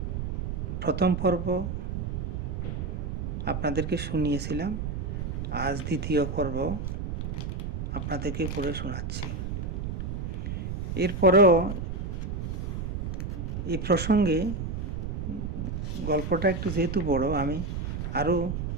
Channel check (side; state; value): right; noise; rumble, 3 dB below the sound